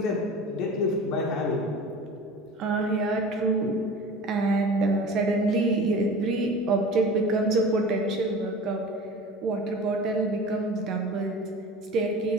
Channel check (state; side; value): normal; both; correlation 0.37